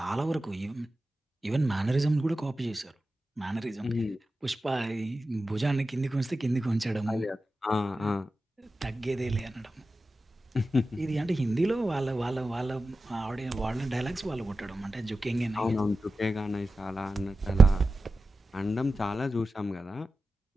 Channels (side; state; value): both; normal; correlation 0.93